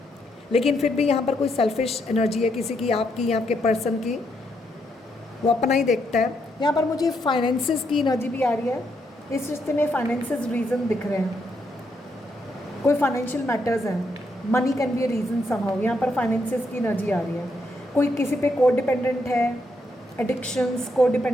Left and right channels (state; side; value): normal; both; correlation 0.77